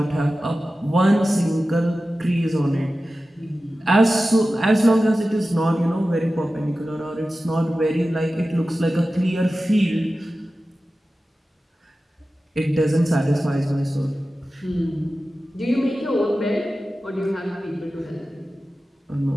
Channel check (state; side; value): normal; both; correlation 0.94